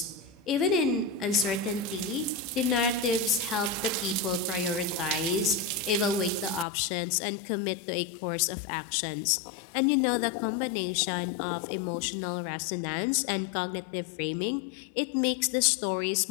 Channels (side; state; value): right; drops out; at 6.7 s